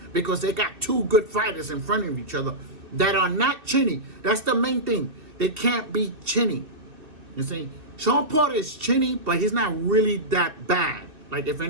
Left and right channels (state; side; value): late; left; 2.5 ms